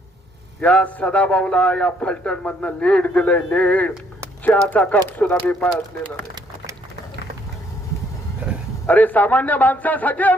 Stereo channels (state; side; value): normal; both; correlation 0.67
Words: या सदाभाऊला या फलटण मधनं लीड दिलंय. लीड चहाचा कप सुद्धा मी पाळलेला नाही. अरे सामान्य माणसासाठी